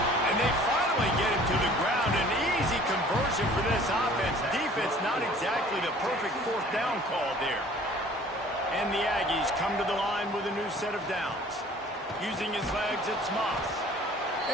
And they finally get him to the ground. An easy conversion for this offense. Defense not exactly the perfect fourth down call there. And the Aggies come to the line with a new set of downs. Using his legs, it's Moss.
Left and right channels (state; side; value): normal; both; correlation 0.51